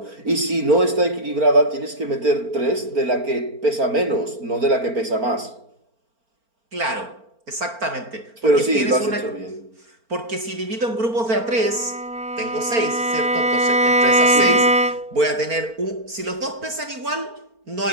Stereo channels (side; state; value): left; late; 4.4 ms